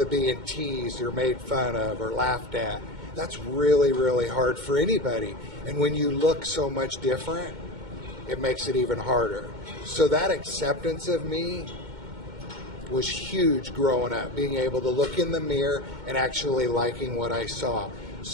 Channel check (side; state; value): left; late; 2.1 ms